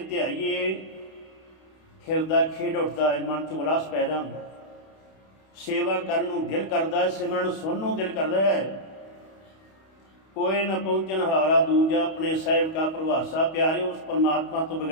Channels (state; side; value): late; right; 31 ms